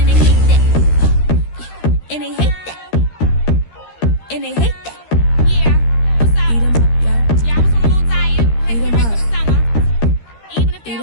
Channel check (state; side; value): late; right; 13 ms